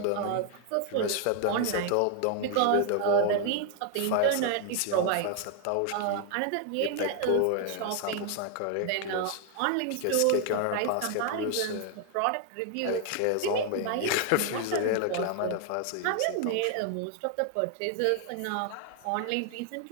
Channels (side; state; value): both; different; correlation 0.00